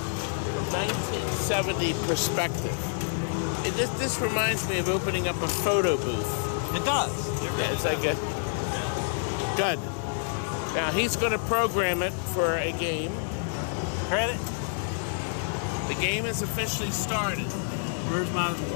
from 1970 perspective? This reminds me of opening up a photo booth. It does. It really That's does. okay. Yeah. Good. Now he's going to program it for a game. Credit. The game has officially started. Where's my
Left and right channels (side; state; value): right; silent; digital silence